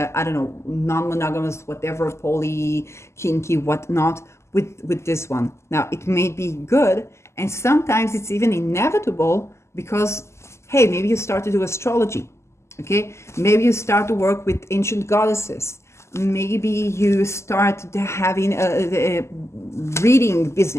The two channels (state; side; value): late; right; 0.13 ms